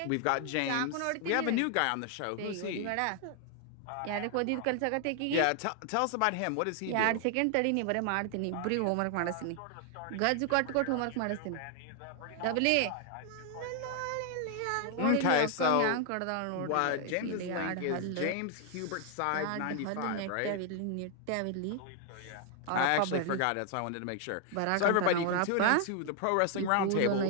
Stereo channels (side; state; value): both; different; correlation 0.00